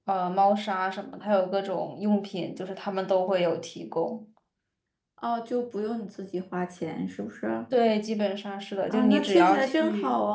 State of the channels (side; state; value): both; identical; correlation 1.00